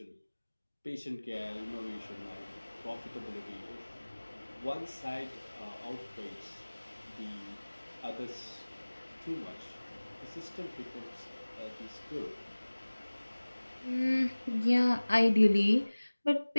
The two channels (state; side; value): inverted; both; correlation -1.00